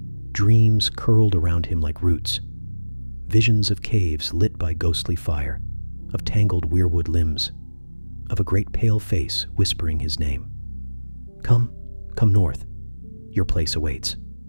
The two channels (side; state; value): both; inverted; correlation -1.00